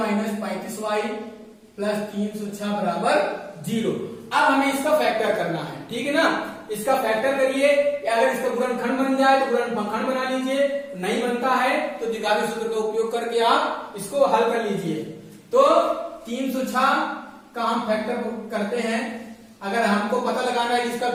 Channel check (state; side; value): identical; both; correlation 1.00